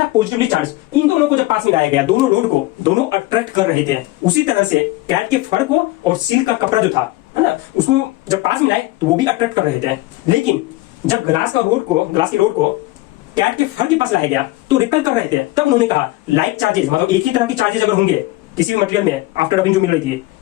पॉजिटिवली चार्ज। इन दोनों को जब पास में लाया गया, दोनों रोड को दोनों अट्रैक्ट कर रहे थे। उसी तरह से कैट के फर को और सिल्क का कपड़ा जो था है ना, उसको जब पास में लाए तो वो भी अट्रैक्ट कर रहे थे। लेकिन जब ग्लास की रोड को कैट के फर के पास लाया गया तो रिपेल कर रहे थे। तब उन्होंने कहा लाइक चार्जेस, मतलब एक ही तरह की चार्जेस अगर होंगे किसी भी मटेरियल में, आफ्टर रबिंग जो मिल रही थी,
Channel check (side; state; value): right; quieter; 19.0 dB